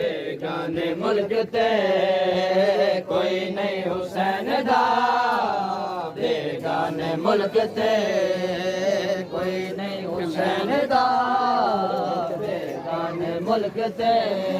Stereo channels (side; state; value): both; identical; correlation 1.00